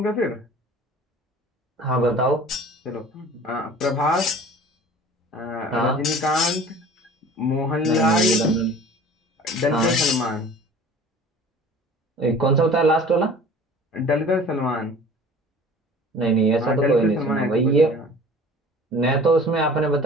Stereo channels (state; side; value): normal; both; correlation 0.45